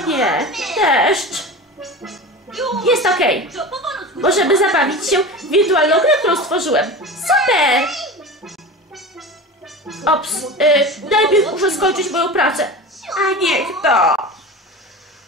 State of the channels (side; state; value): both; normal; correlation 0.30